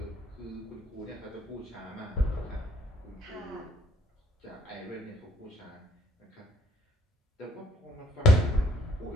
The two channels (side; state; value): both; normal; correlation 0.62